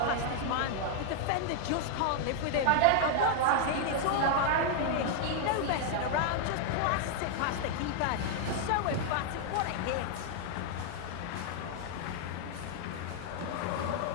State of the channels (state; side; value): different; both; correlation 0.00